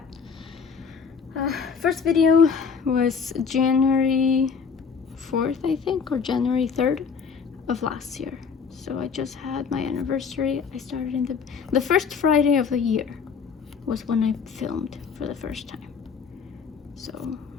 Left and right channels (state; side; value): quieter; right; 6.0 dB